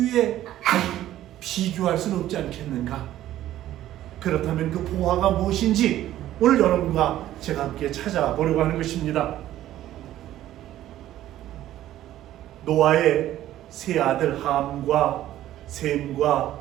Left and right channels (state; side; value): quieter; left; 13.3 dB